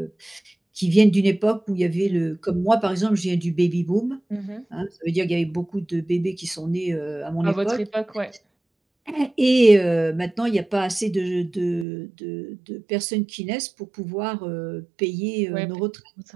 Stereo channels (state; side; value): drops out; left; at 11.9 s